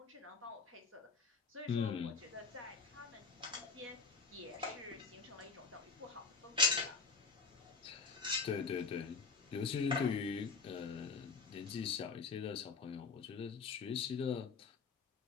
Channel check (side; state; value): right; quieter; 4.7 dB